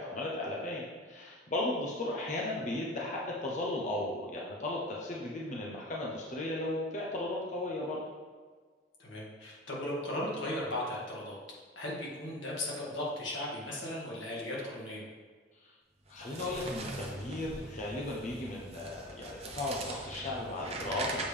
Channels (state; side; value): normal; both; correlation 0.30